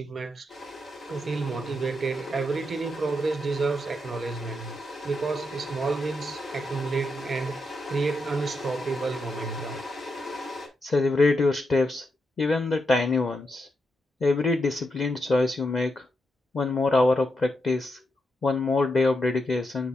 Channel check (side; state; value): both; normal; correlation 0.83